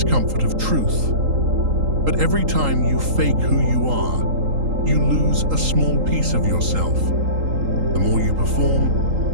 of truth. But every time you fake who you are, you lose a small piece of yourself. The more you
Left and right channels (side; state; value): left; late; 3.8 ms